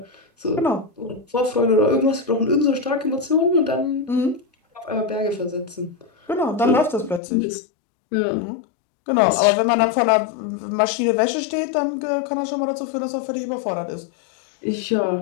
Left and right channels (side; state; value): right; drops out; at 7.2 s